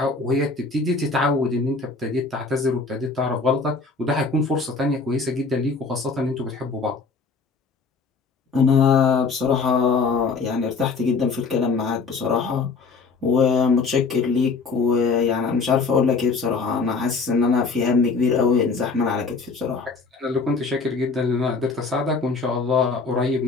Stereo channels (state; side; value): quieter; right; 4.4 dB